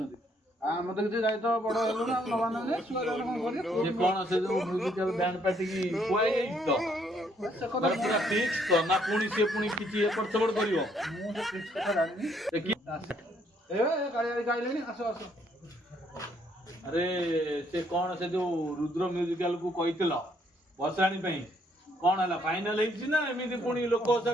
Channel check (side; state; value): both; normal; correlation 0.68